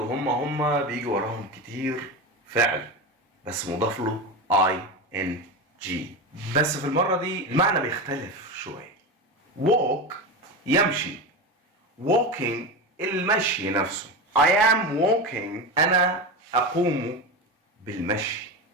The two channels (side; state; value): both; normal; correlation 0.20